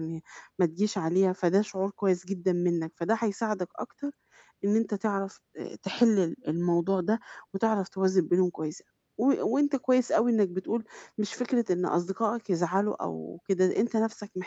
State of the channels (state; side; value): identical; both; correlation 1.00